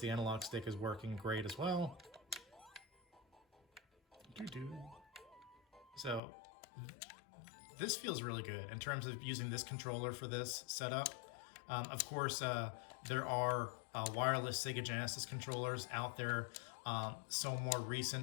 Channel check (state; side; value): drops out; right; at 6.2 s